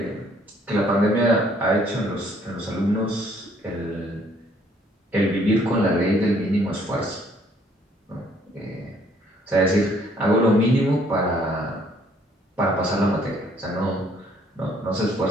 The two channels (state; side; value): normal; both; correlation 0.63